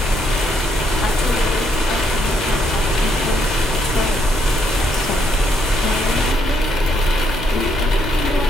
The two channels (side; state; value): both; normal; correlation 0.74